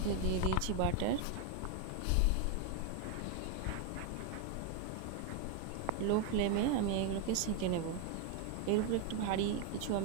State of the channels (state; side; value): different; both; correlation 0.01